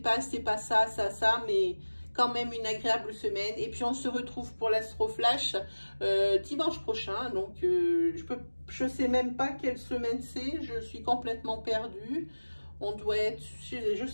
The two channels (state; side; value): inverted; both; correlation -1.00